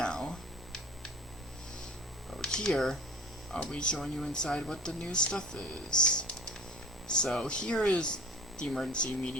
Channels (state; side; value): normal; both; correlation 0.43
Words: over here I'll be showing you inside what the new stuff is. So here is the emergency